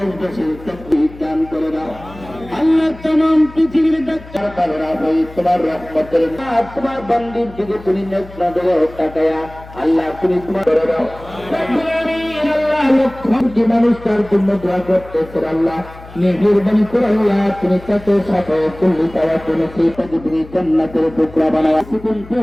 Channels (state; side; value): noise; left; hum, 18 dB below the sound